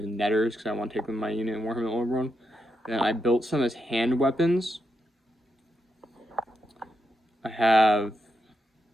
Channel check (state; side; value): normal; both; correlation 0.83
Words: netters because I want to take them in my unit in Warhammer Old World. Then I built some as hand weapons. I have a